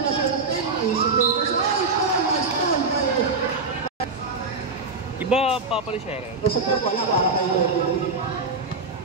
na siya ng 10. Easy to. Ay, foul. Nice foul. Ba, papalis siya rin? Basta po wala para kayo.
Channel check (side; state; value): left; quieter; 3.9 dB